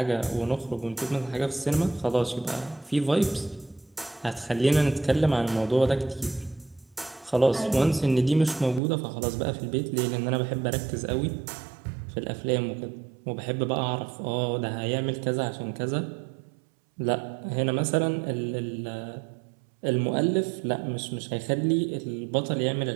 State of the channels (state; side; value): drops out; left; at 8.8 s